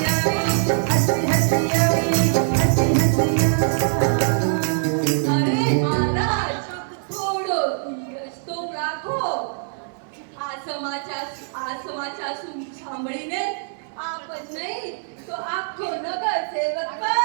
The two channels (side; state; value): left; silent; 64 dB below the other